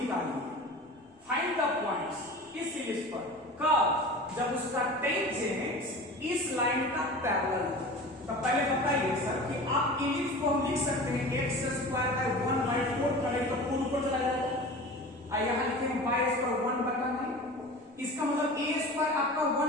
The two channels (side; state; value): both; normal; correlation 0.36